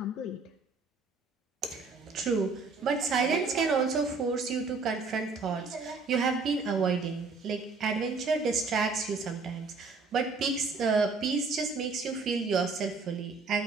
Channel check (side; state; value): left; quieter; 4.3 dB